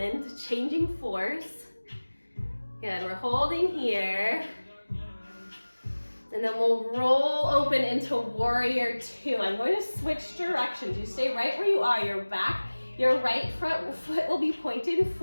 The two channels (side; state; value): both; inverted; correlation -1.00